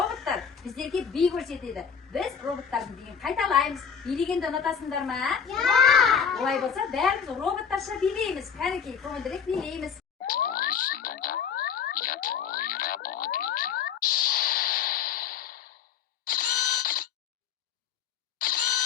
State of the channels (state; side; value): quieter; right; 7.2 dB